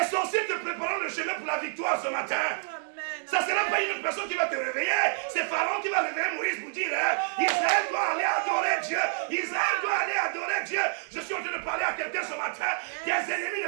sorciers te préparant le chemin pour la victoire ce matin. Ça ne sera pas une autre personne qui va te réveiller. C'est Pharaon qui va réveiller Moïse pour dire Israël doit aller adorer Dieu. Israël doit aller adorer Dieu. Je suis en train de parler à quelqu'un ce matin. Tes ennemis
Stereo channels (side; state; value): left; silent; digital silence